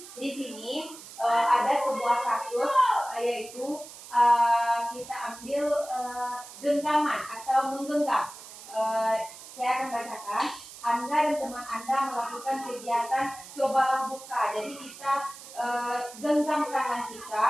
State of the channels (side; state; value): right; noise; hiss, 16 dB below the sound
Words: di sini ada sebuah kasus yaitu kita ambil genggaman atau menggenggam. Saya akan bacakan. Anda dan teman Anda melakukan kegiatan cobalah buka. Jadi kita genggam tangan kita